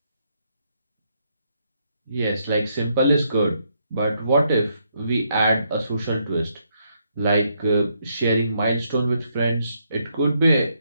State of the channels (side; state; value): both; inverted; correlation -0.76